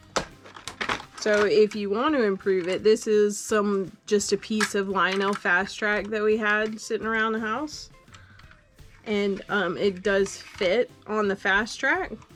So if you want to improve it, this is just a piece of Lionel Fast Track that we had sitting around the house. And it does fit on the Fast Track.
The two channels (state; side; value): identical; both; correlation 1.00